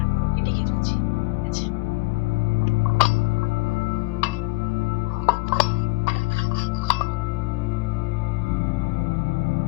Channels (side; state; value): right; quieter; 23.1 dB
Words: ওকে ডেকে তুলছি। ঠিক আছে?